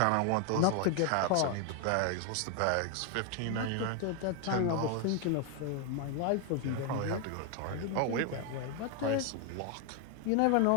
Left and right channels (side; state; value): both; different; correlation 0.00